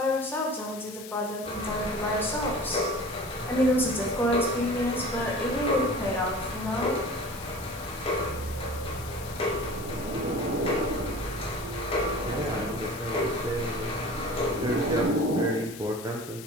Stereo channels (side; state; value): left; noise; hiss, 14 dB below the sound